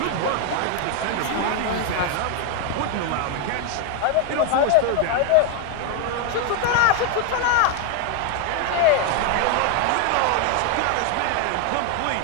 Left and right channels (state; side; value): different; both; correlation 0.01